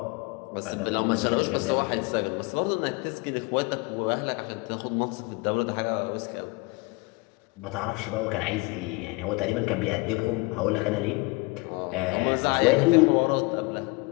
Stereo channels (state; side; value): quieter; right; 25.3 dB